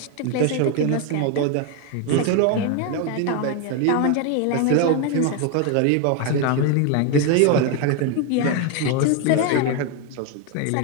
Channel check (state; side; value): different; both; correlation 0.01